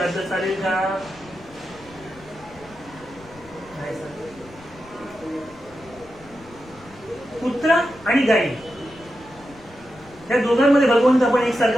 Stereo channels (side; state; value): left; noise; rumble, 23 dB below the sound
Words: चालेल का? नाही चालेल. कुत्रा आणि गाई या दोघांमध्ये भगवंत आपण